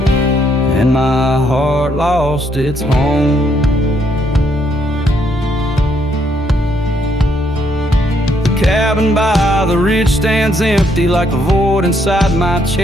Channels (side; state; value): both; normal; correlation 0.72